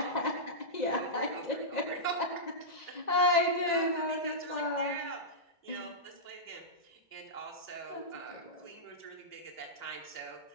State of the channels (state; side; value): late; right; 1.9 ms